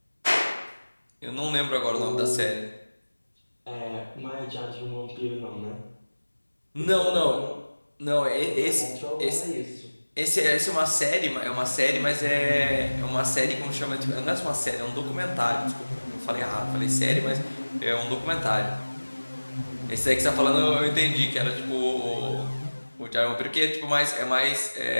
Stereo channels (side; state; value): both; inverted; correlation -1.00